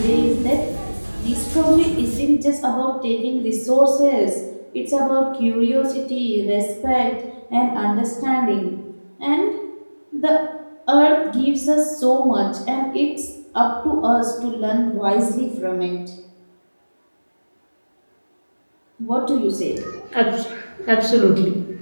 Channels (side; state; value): both; inverted; correlation -1.00